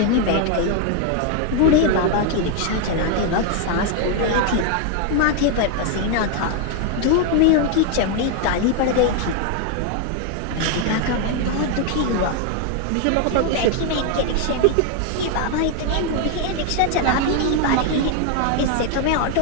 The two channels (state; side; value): different; both; correlation 0.01